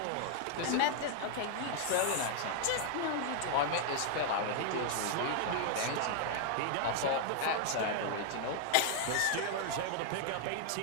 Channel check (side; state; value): both; different; correlation 0.00